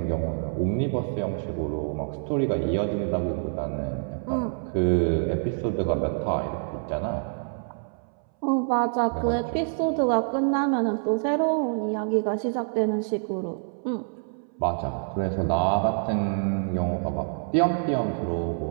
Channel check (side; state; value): left; silent; 60 dB below the other